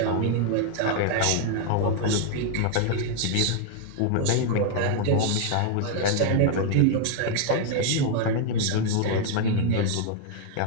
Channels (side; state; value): both; different; correlation 0.00